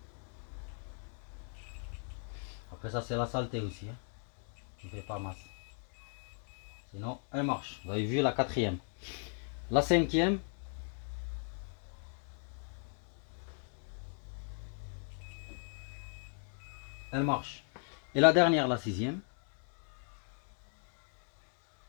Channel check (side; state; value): right; silent; 53 dB below the other